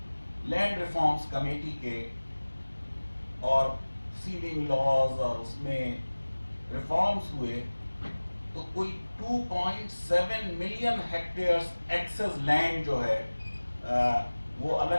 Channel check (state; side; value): inverted; both; correlation -1.00